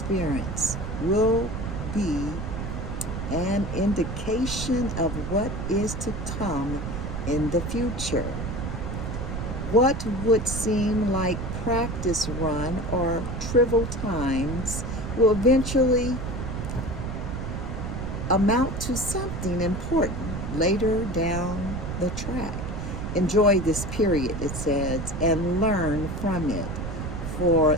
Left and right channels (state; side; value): noise; right; rumble, 5 dB below the sound